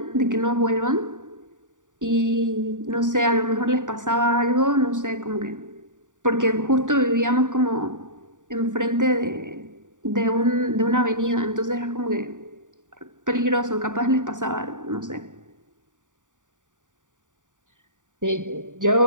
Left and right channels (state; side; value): late; left; 0.87 ms